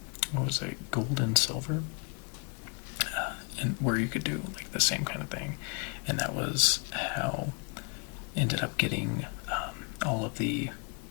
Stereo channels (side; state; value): right; quieter; 35.7 dB